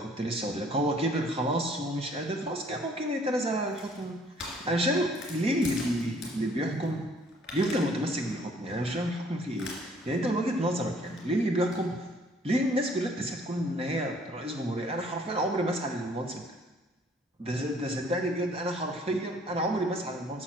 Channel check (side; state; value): both; normal; correlation 0.59